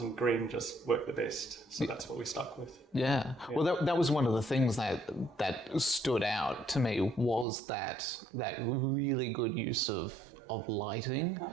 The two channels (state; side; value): drops out; left; at 7.5 s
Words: green just worked the best. So that's what we stuck with. Yeah. Well, that was one of the things that stood out to me was that really good use of lighting